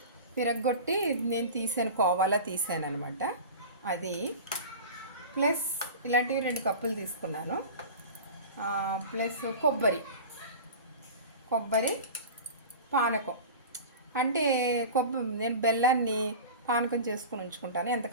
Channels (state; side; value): inverted; both; correlation -0.33